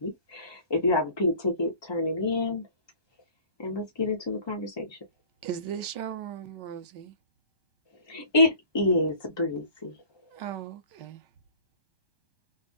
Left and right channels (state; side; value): late; right; 1.2 ms